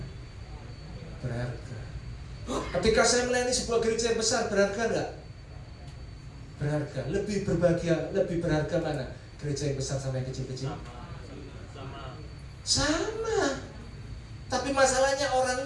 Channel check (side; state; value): both; identical; correlation 1.00